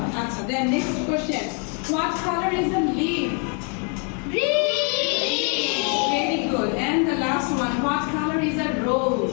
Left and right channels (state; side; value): quieter; right; 36.7 dB